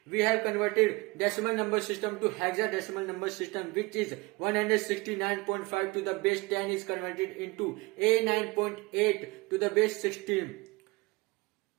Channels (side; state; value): left; quieter; 24.3 dB